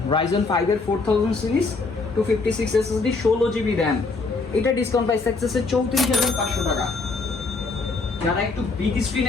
Ryzen 5 এর 4000 সিরিজ, 256 SSD 16GB RAM। এটা ডিসকাউন্ট প্রাইস থাকতেছে 34,500 টাকা। যারা একটু বিগ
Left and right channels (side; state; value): right; quieter; 3.9 dB